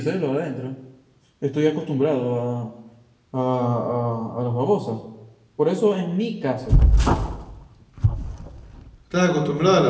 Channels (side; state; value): both; identical; correlation 1.00